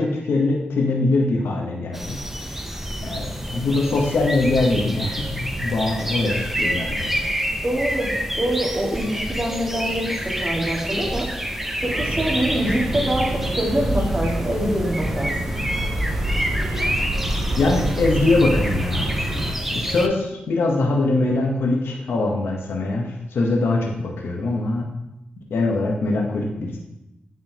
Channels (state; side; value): normal; both; correlation 0.86